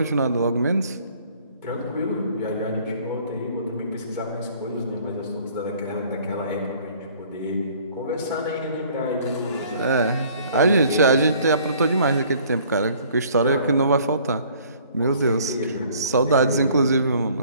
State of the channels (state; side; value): inverted; both; correlation -0.56